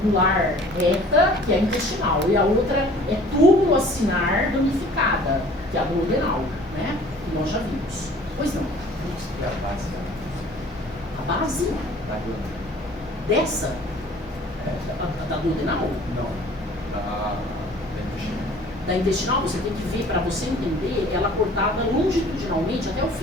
reta, que é a intestinal, e a outra é túbulo acinar ramificada, que é a duodenal, né? Que nós já vimos. Pois não. E a base? A base? Da glândula. Dessa? Da duodenal? Não. Da intestinal. Da intestinal, você tem que ver, para você entender, ela cortada longitudinalmente até o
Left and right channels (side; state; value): both; normal; correlation 0.50